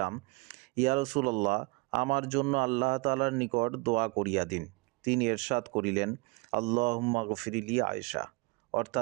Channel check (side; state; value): left; quieter; 26.8 dB